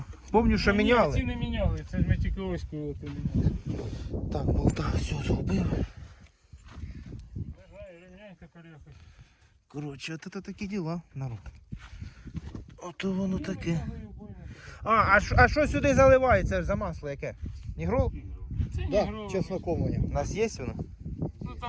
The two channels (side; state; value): both; identical; correlation 1.00